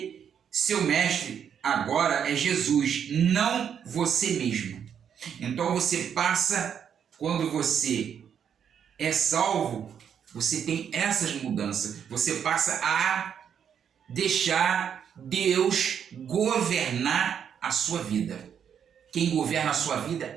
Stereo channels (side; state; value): left; quieter; 8.1 dB